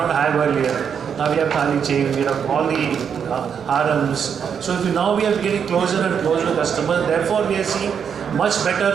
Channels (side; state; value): left; quieter; 7.4 dB